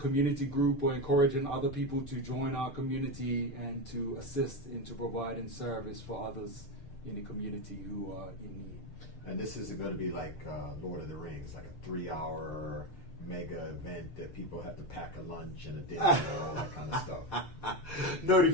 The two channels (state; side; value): late; right; 6.6 ms